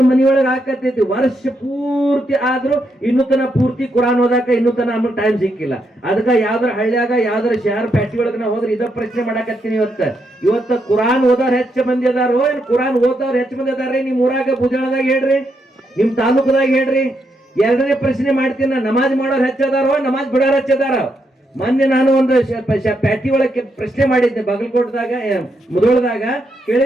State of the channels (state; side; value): normal; both; correlation 0.80